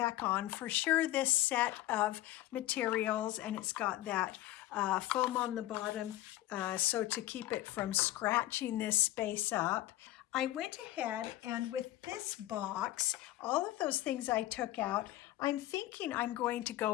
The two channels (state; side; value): quieter; right; 15.6 dB